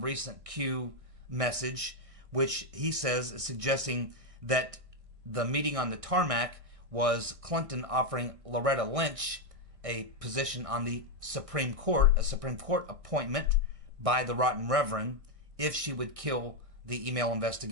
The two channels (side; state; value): left; late; 1.6 ms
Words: Q message, which he says is suggesting that the meeting on the tarmac was Clinton offering Loretta Lynch a position on the Supreme Court, a Supreme Court appointment by the Rotten Reverend, if she would kill the email